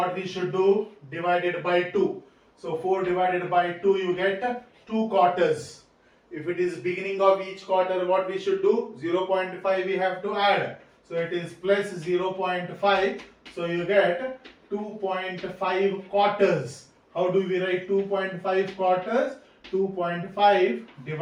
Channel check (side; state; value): both; identical; correlation 1.00